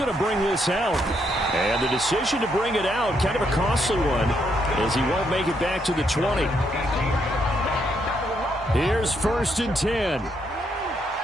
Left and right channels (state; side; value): normal; both; correlation 0.76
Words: to bring this out. And the decision to bring it out, kind of a costly one, as he won't make it back to the 20. Here's 1st and 10.